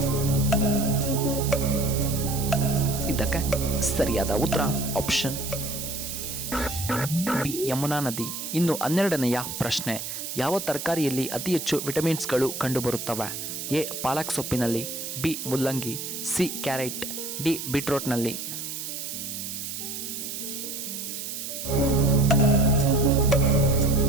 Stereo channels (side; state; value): right; noise; hiss, 6 dB below the sound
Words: ಇದಕ್ಕೆ ಸರಿಯಾದ ಉತ್ತರ ಆಪ್ಷನ್ ಬಿ ಯಮುನಾ ನದಿ. ಇನ್ನು 12ನೆಯ ಪ್ರಶ್ನೆ, ಯಾವ ತರಕಾರಿಯಲ್ಲಿ ಅತಿ ಹೆಚ್ಚು ವಿಟಮಿನ್ಸ್ಗಳು ಕಂಡುಬರುತ್ತವೆ? ಎ ಪಾಲಕ್ ಸೊಪ್ಪಿನಲ್ಲಿ, ಬಿ ಮುಲ್ಲಂಗಿ, ಸಿ ಕ್ಯಾರೆಟ್, ಡಿ ಬೀಟ್ರೋಟ್ನಲ್ಲಿ.